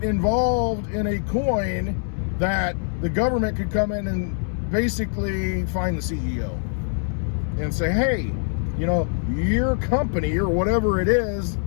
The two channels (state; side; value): silent; right; 63 dB below the other